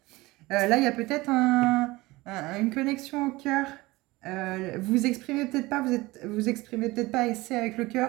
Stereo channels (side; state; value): left; quieter; 20.8 dB